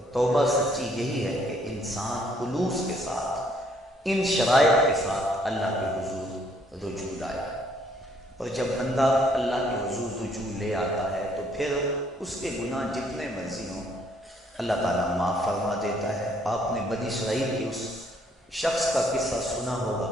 توبہ سچی یہی ہے کہ انسان خلوص کے ساتھ ان شرائط کے ساتھ اللہ کے حضور رجوع لائے، اور جب بندہ اللہ کے حضور رجوع لے آتا ہے تو پھر اس کے گناہ جتنے مرضی ہوں اللہ تعالیٰ معاف فرما دیتا ہے۔ آپ نے بنی اسرائیل کی اس شخص کا قصہ سنا ہوگا،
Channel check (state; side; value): normal; both; correlation 0.66